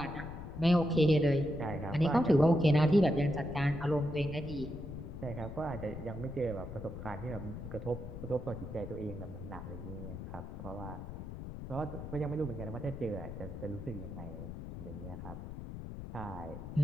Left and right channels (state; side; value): noise; left; rumble, 9 dB below the sound